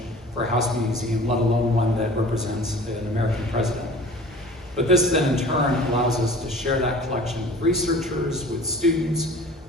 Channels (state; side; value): normal; both; correlation 0.44